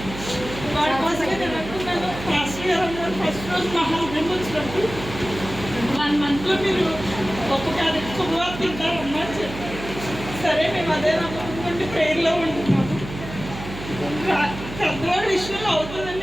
వాడి కోసమే నేను అనుకున్నాను, ఫస్ట్ ఇయర్ అన్నారు. ఫస్ట్ రోజు మహాభం వచ్చినప్పుడు 1 monthలో మీరు గొప్ప క్యారెట్ శుభవార్త తింటారమ్మా అని చెప్పారు. సరే మేము అదే నమ్ముకుంటే ప్రేయర్లో ఉంటున్నాము. పెద్దవాడి విషయంలో అవుతుందని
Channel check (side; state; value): right; noise; hum, 11 dB below the sound